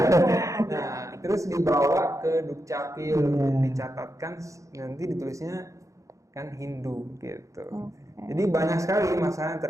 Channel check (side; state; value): left; late; 0.15 ms